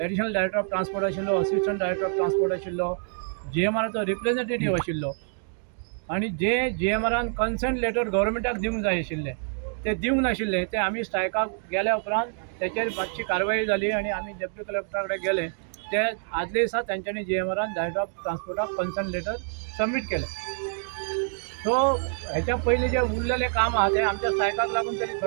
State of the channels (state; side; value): silent; left; 60 dB below the other